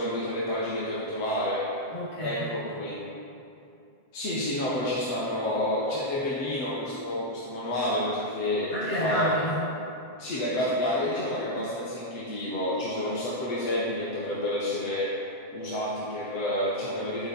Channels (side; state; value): right; late; 7.6 ms